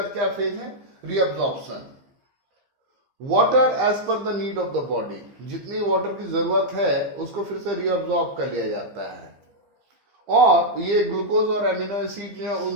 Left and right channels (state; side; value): late; left; 15 ms